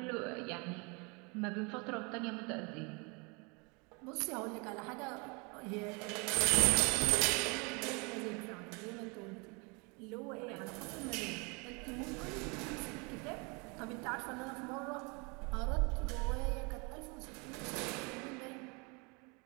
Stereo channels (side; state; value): left; quieter; 30.5 dB